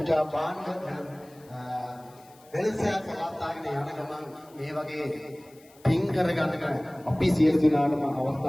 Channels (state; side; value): noise; left; hiss, 27 dB below the sound